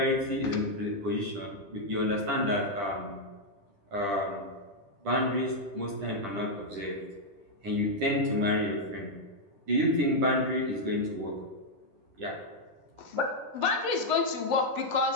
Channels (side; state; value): left; late; 10 ms